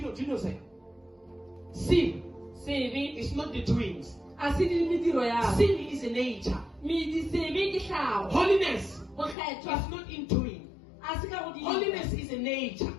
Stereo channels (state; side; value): drops out; right; at 9.3 s